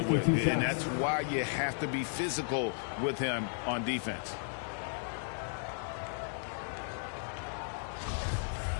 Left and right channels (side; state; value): right; silent; 55 dB below the other